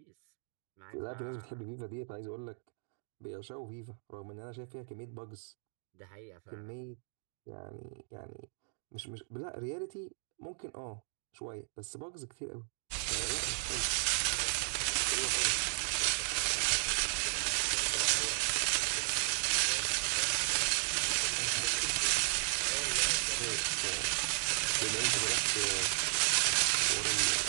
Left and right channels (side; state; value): left; silent; digital silence